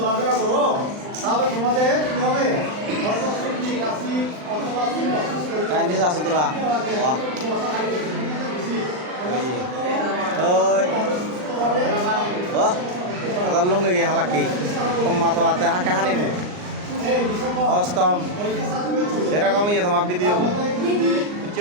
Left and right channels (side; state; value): left; late; 39 ms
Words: করো তাহলে তোমাদের কি হবে চাইনিজ আছে তোরা বাহ ওই বাহ আদার লঙ্গে গিয়ে হালাকি কম্মা তো আতে হাঁকা হানিব অষ্টম সেরকম ইয়ে তোমার ভিডিও